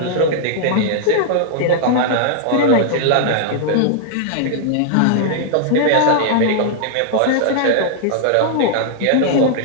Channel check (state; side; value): different; both; correlation -0.01